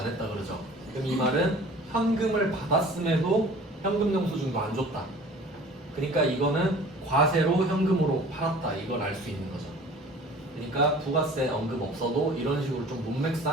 했다 그러죠. 그럼 이 말은 현금을 받았음에도 현금 영수증도 안 줬다. 그러니까 이거는 과세로 현금으로 팔았다. 이걸 알 수 있는 거죠. 그러니까 부가세 언급 없어도 이런 식으로 좀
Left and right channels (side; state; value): both; normal; correlation 0.46